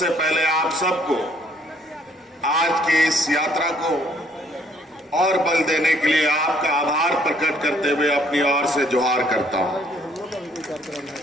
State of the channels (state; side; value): normal; both; correlation 0.63